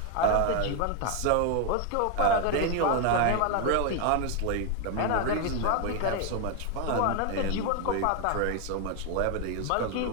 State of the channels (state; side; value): different; both; correlation 0.01